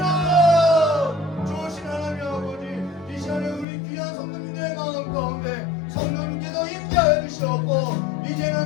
좋으신 하나님 아버지, 이 시간에 우리 귀한 성도님들의 마음 가운데 성령님께서 임재하여 주시었고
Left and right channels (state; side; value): drops out; right; at 3.7 s